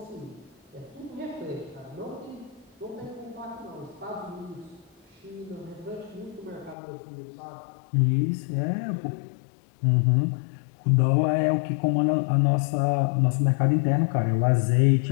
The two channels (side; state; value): right; drops out; at 6.8 s